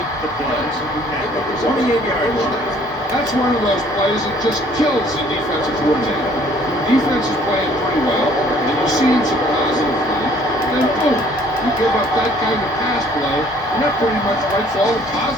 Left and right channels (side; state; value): both; normal; correlation 0.58